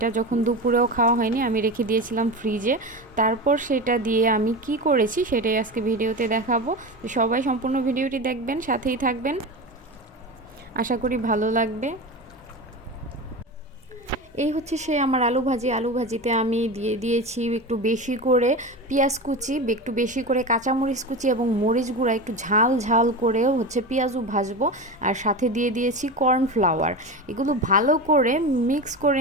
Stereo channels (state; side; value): normal; both; correlation 0.25